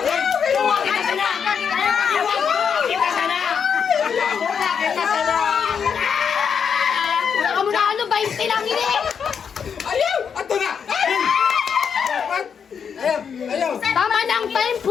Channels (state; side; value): quieter; right; 6.9 dB